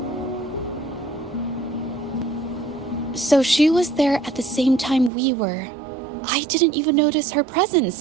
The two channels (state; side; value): drops out; left; at 5.1 s